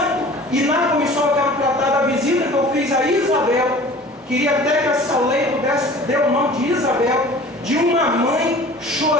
e na comissão eu quero tratar da visita que eu fiz a Isabel. Queria até que essa lei pudesse dar o nome de Isabel, de uma mãe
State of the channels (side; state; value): both; normal; correlation 0.44